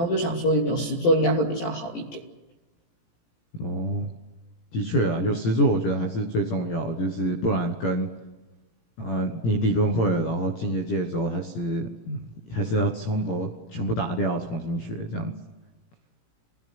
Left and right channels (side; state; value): right; late; 18 ms